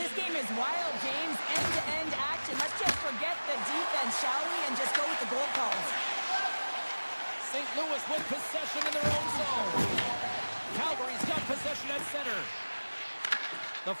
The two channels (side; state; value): both; inverted; correlation -1.00